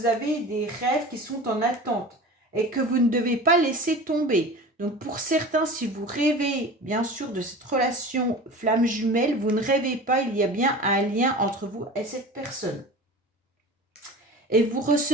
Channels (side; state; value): both; normal; correlation 0.36